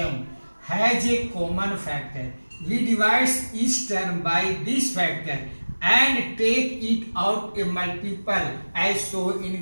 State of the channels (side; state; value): both; inverted; correlation -1.00